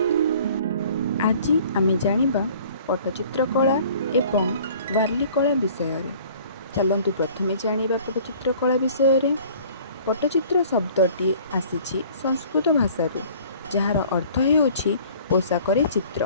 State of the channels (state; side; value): inverted; both; correlation -0.51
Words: आज आमे जानिबा पट्टचित्र कला एवं वार्ली कला विषय। चलतु प्रथमे जानिबा पट्टचित्र कला विषय। पट्टचित्र शब्दटी आसीछि संस्कृत भाषारू जार अर्थ हेउछि पोशाकरे